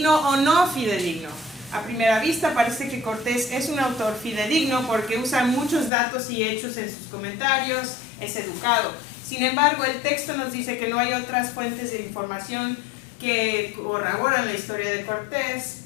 o no fidedigno. A primera vista parece que Cortés es un autor fidedigno porque usa muchos datos y hechos en sus comentarios, es educado. Sin embargo, el texto nos dice que no hay otras fuentes de información que corroboran la historia de Cortés,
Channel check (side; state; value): right; drops out; at 5.9 s